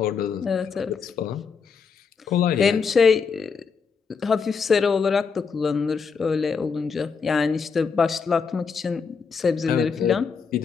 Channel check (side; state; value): right; quieter; 5.6 dB